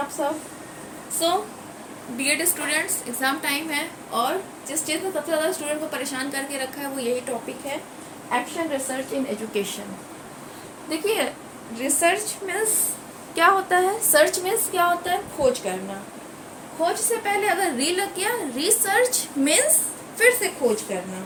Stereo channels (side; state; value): both; identical; correlation 1.00